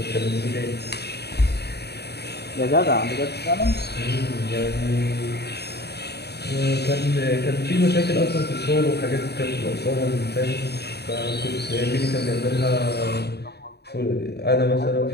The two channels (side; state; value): right; late; 0.48 ms